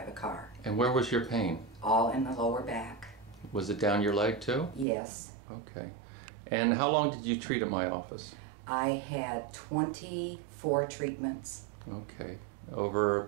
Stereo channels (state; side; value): drops out; left; at 4.9 s